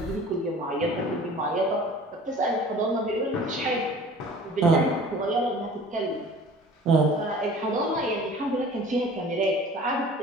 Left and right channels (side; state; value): both; normal; correlation 0.45